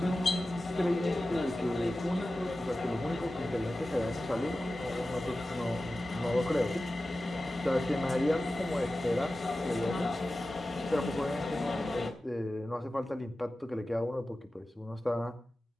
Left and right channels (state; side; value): normal; both; correlation 0.95